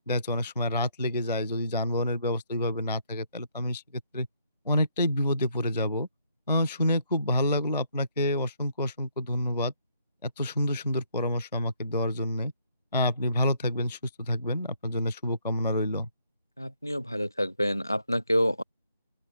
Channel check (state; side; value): inverted; both; correlation -0.69